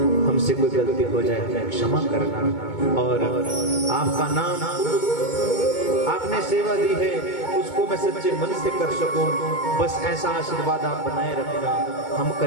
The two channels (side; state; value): right; late; 2.2 ms